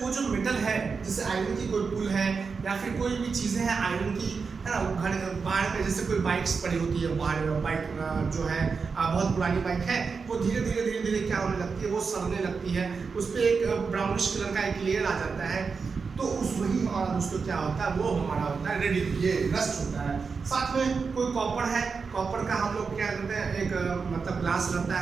वो जो मेटल है, जैसे आयरन की कोई पुल है या फिर कोई भी चीज़ें हैं आयरन की, है ना, घर बाहर पे जैसे कोई बाइक्स पड़ी होती है, बाहर बाइक जो है बहुत पुरानी बाइक है, वो धीरे धीरे क्या होने लगती है, वो सड़ने लगती है, उस पर एक ब्राउनिश कलर का एक लेयर आ जाता है, तो उस वही हमारा दोस्तों क्या होता है, वो हमारा होता है रेडी, ये रस्ट होता है। साथ में कोई कॉपर है, कॉपर का हम लोग क्या करते हैं, एक मतलब ग्लास रहता है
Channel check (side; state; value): left; quieter; 5.1 dB